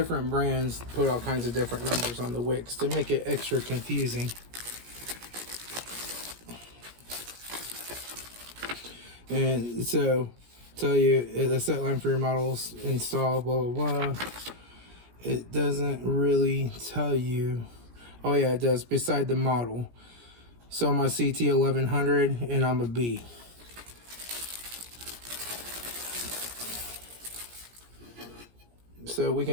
brands put all kinds of different numbers on the wicks to make it extra confusing. And so tell you the set line for your models install blah blah blah. It doesn't really tell you. Oh yeah, it does, beside the model. So I'm a CT1100 and I'm a B. So we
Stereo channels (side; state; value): left; late; 17 ms